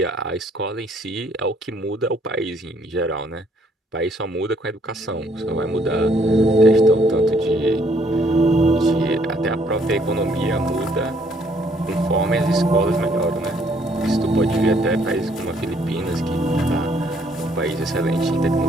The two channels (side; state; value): both; normal; correlation 0.66